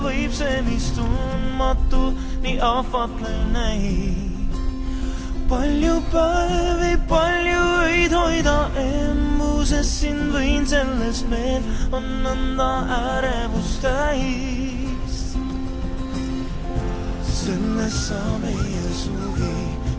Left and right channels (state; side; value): identical; both; correlation 1.00